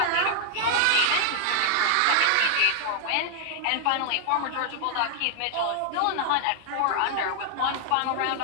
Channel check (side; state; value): both; different; correlation 0.00